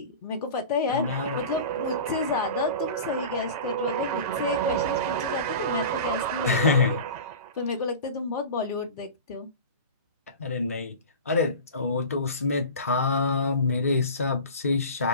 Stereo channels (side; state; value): both; inverted; correlation -0.33